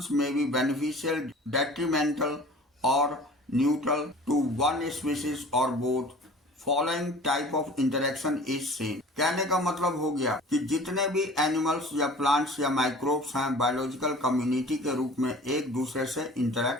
may be beneficial, detrimental और न्यूट्रल टू वन स्पीशीज और both. Following type of interaction is seen. कहने का मतलब हो गया कि जितने भी एनिमल्स या प्लांट्स या माइक्रोब्स हैं बायोलॉजिकल कम्युनिटी के रूप में एक दूसरे से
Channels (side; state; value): both; normal; correlation 0.44